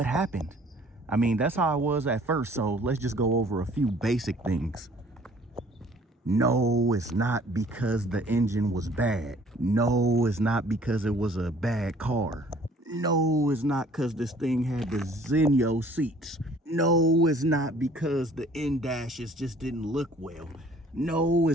happened. I mean, that's how I was at first, so let's just go over a few basic things. No, it's not because the engine was bad. No, it's not because it was a bad car. No, it's not because this thing had the Zenio seats. No, it's not because the in-dashes just didn't look well. No,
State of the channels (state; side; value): normal; both; correlation 0.55